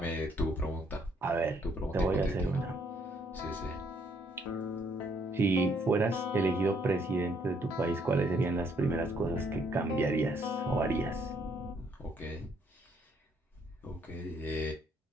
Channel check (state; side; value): normal; both; correlation 0.69